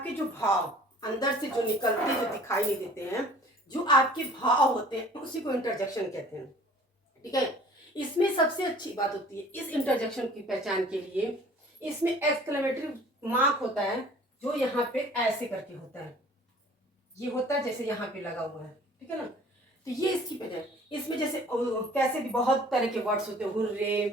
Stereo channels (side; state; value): both; normal; correlation 0.50